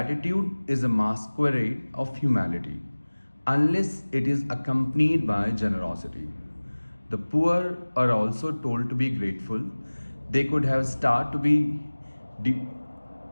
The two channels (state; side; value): inverted; both; correlation -1.00